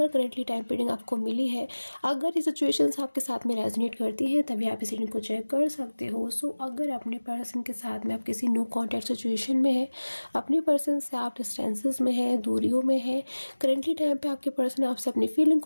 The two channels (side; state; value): both; inverted; correlation -1.00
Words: करेंटली टाइम रीडिंग आपको मिली है, अगर ये सिचुएशंस आपके साथ में रेजोनेट करती हैं, तभी आप इस रीडिंग को चेक कर सकते हो। सो अगर अपने पर्सन के साथ में आप किसी नो कॉन्टैक्ट सिचुएशन में है, अपने पर्सन से आप डिस्टेंसेस में है, दूरियों में है, करेंटली टाइम पे आपके पर्सन आपसे अपनी फीलिंग